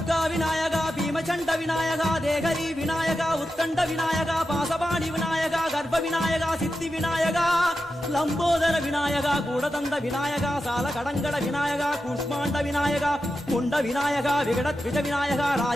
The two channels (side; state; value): both; normal; correlation 0.90